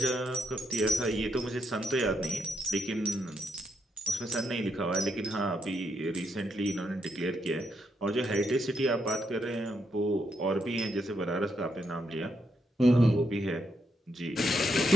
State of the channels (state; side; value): normal; both; correlation 0.79